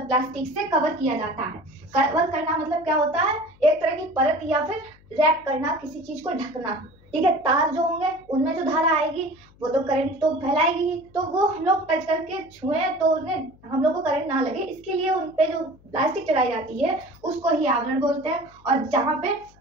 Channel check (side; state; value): left; noise; hum, 28 dB below the sound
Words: प्लास्टिक से कवर किया जाता है। कवर करना मतलब क्या होता है? एक तरह की परत या फिर रैप करना, किसी चीज को ढकना, ठीक है। तार जो होंगे उनमें जो धारा आएगी वो तो करंट तो फैलाएगी ही, तो वो हम लोग टच करके छुए तो उन्हें हम लोग को करंट ना लगे, इसके लिए उन पे जो प्लास्टिक चढ़ाई जाती है उसको ही आवरण बोलते हैं। और जहाँ पे